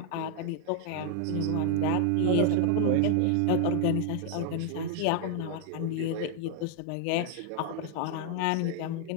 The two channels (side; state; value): both; different; correlation 0.00